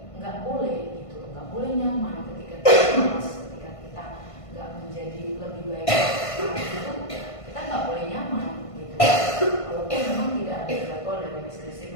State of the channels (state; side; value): late; right; 1.5 ms